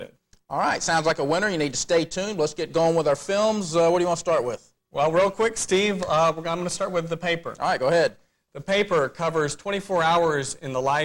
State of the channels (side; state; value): both; identical; correlation 1.00